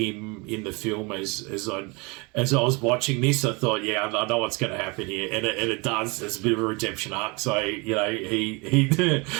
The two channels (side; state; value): left; quieter; 28.4 dB